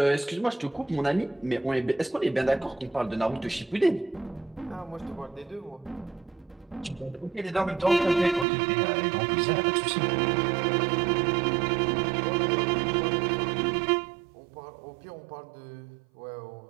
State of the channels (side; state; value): left; drops out; at 8.5 s